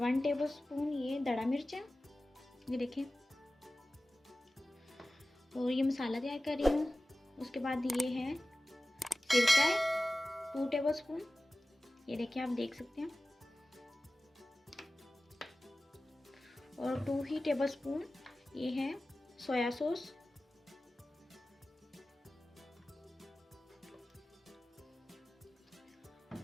टेबल स्पून ये दड़ा मिर्च है, ये देखें। और ये मसाला तैयार कर रही हूँ। उसके बाद ये है सिरका है 2 टेबल स्पून, ये देखिए आप देख सकते हैं। और 2 ही टेबल स्पून ये है सोया सॉस,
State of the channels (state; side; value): normal; both; correlation 0.96